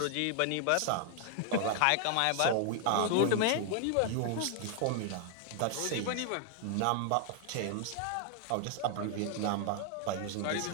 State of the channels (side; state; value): both; different; correlation 0.00